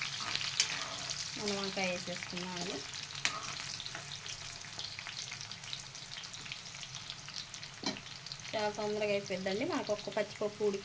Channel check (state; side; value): identical; both; correlation 1.00